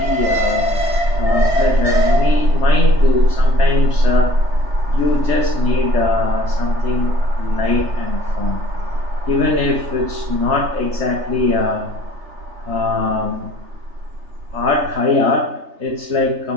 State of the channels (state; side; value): late; left; 3.3 ms